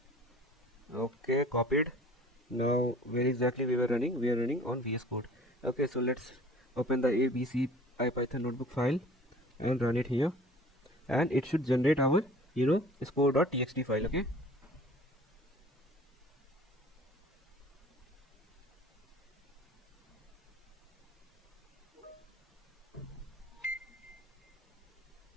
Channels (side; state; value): both; normal; correlation 0.48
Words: okay, copied. Now where exactly we were running? We are running on VS Code. Okay, so let's open the ABC IPython notebook file and run it here, and it should generate our score.txt file. Okay,